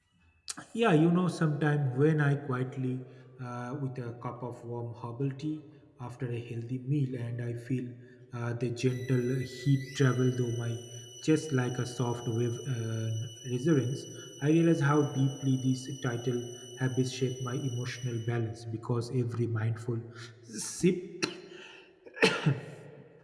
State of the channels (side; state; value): both; identical; correlation 1.00